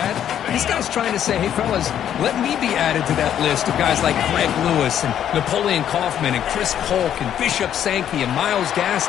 This guy's trying to say, hey, fellas, let me be added to that list of guys like Greg Lewis and Napoleon Kaufman and Chris Polk and Bishop Sankey and Myles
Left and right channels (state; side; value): quieter; right; 10.0 dB